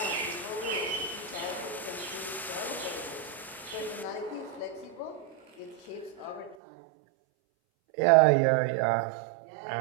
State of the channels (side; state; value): left; drops out; at 6.6 s